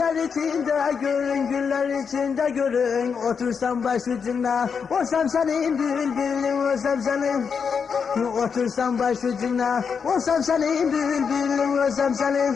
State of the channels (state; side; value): quieter; right; 6.2 dB